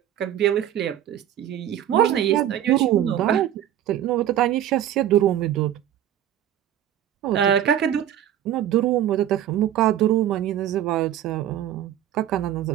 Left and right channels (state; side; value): quieter; left; 11.2 dB